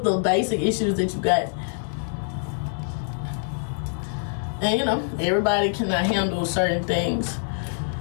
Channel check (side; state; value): right; silent; digital silence